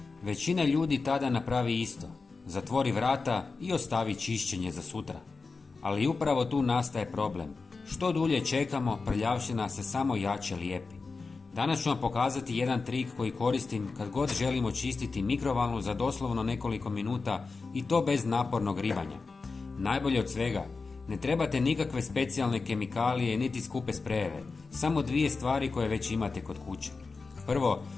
Većina ljudi tada napravi isto. Zatvori vrata i ostavi čišćenje za sutra. Ali upravo tu nastaje problem. Što dulje čekamo, prljavština se samo jače lijepi. Danas ću vam pokazati jedan trik koji koristim kad god želimo čistiti mikrovalnu za doslovno nekoliko minuta i to bez napornog ribanja. Najbolje od svega, ne trebate nikakve specijalne kemikalije niti skupe sprejeve, samo dvije stvari koje već imate kod kuće. Prvo,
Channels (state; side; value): quieter; right; 4.2 dB